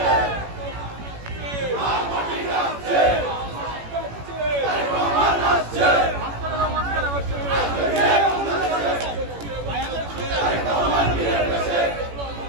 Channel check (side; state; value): left; late; 18 ms